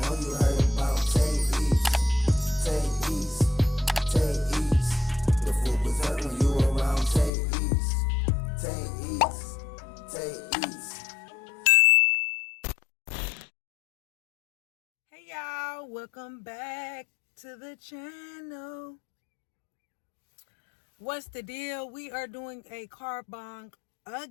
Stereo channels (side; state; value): right; drops out; at 7.3 s